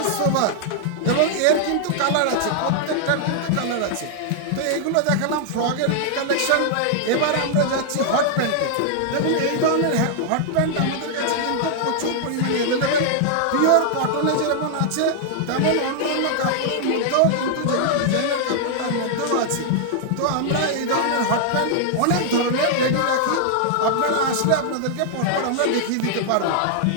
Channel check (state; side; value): different; both; correlation -0.01